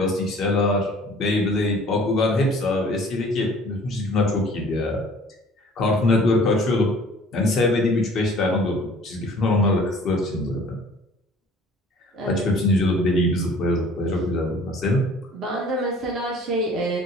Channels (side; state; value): both; normal; correlation 0.51